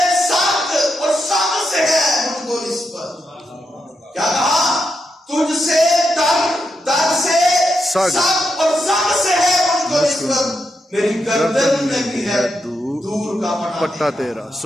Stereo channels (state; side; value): normal; both; correlation 0.84